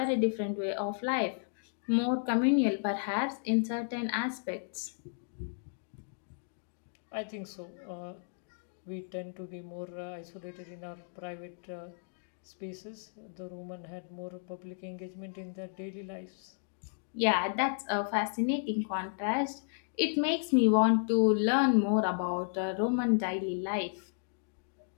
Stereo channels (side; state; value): right; silent; digital silence